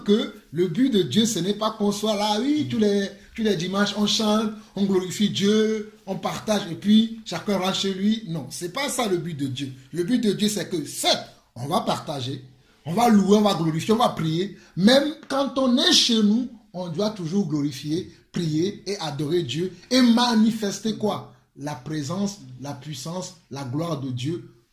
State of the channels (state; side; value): identical; both; correlation 1.00